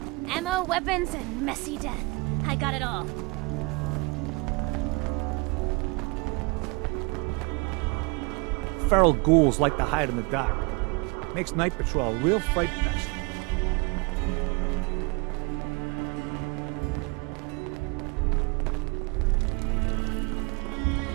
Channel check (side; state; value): left; quieter; 27.9 dB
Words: Ammo, weapons, and messy death. I got it all. Feral ghouls like to hide in the dark. Makes night patrol a real fright fest.